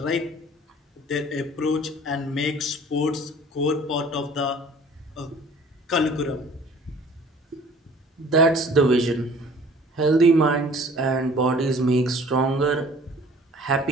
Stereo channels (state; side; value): normal; both; correlation 0.50